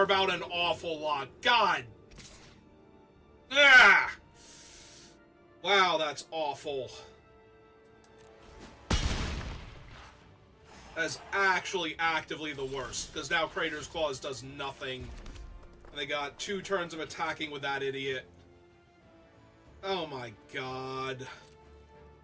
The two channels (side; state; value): both; identical; correlation 1.00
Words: about an awful lot. God! Ah! Wow, that's awful. That's actually actively the worst, because now Crater's Claws does nothing. And they got 2 turns of attacking with that idiot. Oh my god.